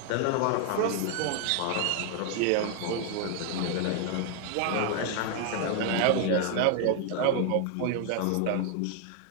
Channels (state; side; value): different; both; correlation 0.00